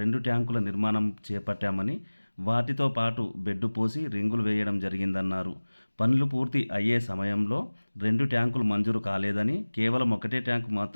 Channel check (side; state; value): both; inverted; correlation -1.00